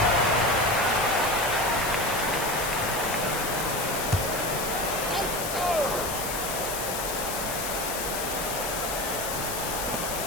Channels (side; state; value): left; noise; hiss, 4 dB below the sound